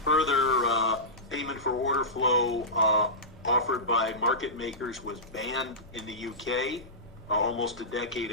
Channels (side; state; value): both; normal; correlation -0.17